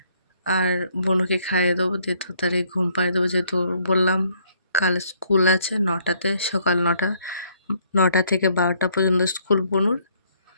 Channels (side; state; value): both; inverted; correlation -0.66